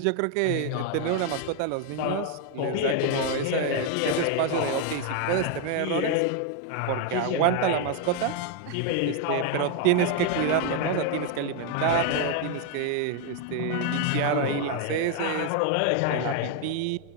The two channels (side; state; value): both; different; correlation 0.01